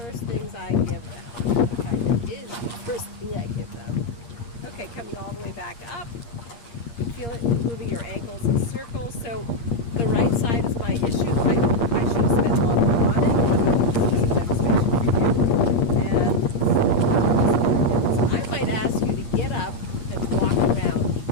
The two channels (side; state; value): right; late; 8.5 ms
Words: things I give them. In fact, it is the first thing I give them. Okay, coming all the way back up. Feel it moving your ankles in circles. So the right side is my issue. I should have spent longer on it. This is a demonstration for you. And so I might ask you to get up and walk around